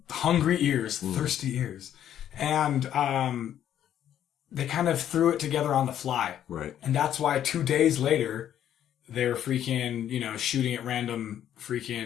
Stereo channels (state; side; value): quieter; right; 10.5 dB